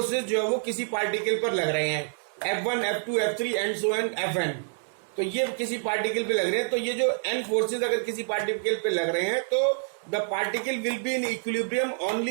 जो है वो किसी पार्टिकल पर लग रहे हैं, F1 F2 F3 and so on Fn। तो ये किसी पार्टिकल पे लग रहे हैं, तो ये जो n forces अगर किसी पार्टिकल पे लग रहे हैं, तो the particle will be in equilibrium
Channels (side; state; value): left; silent; 60 dB below the other